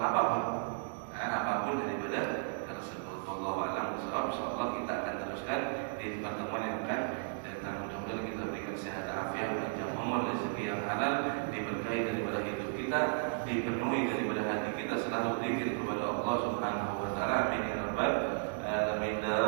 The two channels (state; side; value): silent; left; digital silence